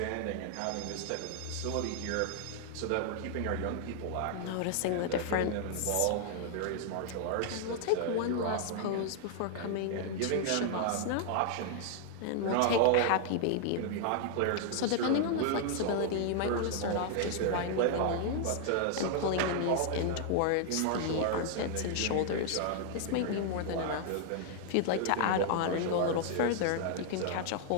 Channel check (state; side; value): different; both; correlation 0.00